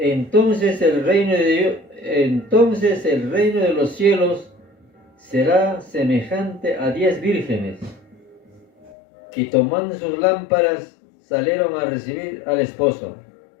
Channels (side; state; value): right; drops out; at 8.9 s